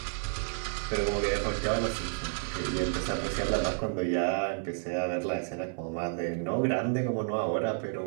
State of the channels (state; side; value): silent; left; 57 dB below the other